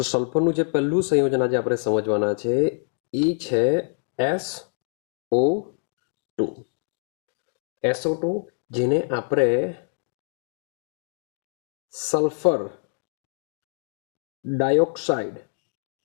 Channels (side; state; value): right; silent; 61 dB below the other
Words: સલ્ફરનું જે પહેલું સંયોજન આજે આપણે સમજવાના છે એ છે SO2। SO2 જેને આપણે સલ્ફર